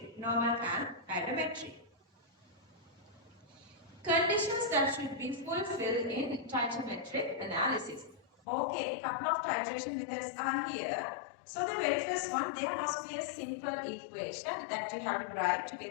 Conditions that should be fulfilled in titometric analysis. Okay, a couple of titration methods are here. So the very first one, there must be a simple equation that you have to write to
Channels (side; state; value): right; drops out; at 8.2 s